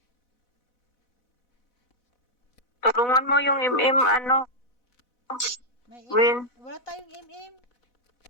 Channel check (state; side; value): late; right; 4.0 ms